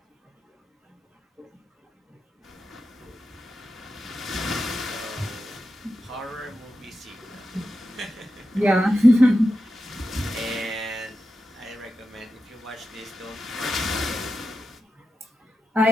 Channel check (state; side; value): normal; both; correlation 0.90